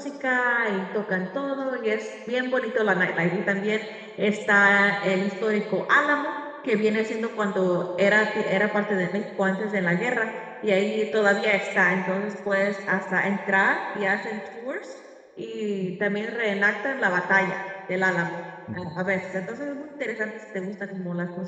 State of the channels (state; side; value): identical; both; correlation 1.00